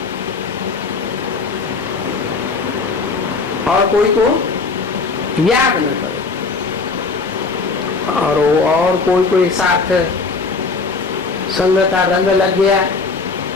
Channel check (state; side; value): quieter; right; 4.3 dB